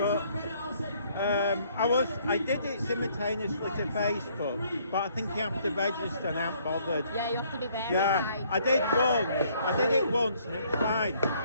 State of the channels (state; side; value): inverted; both; correlation -0.64